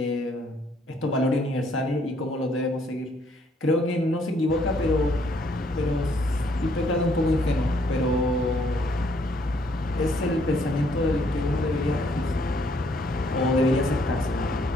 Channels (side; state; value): both; normal; correlation 0.67